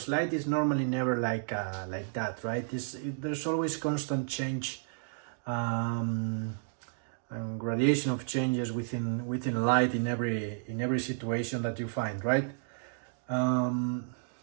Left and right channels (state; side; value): silent; left; digital silence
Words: light is normally never like that, right? There's always constant change and gradation of changes within light in every situation that you find, right?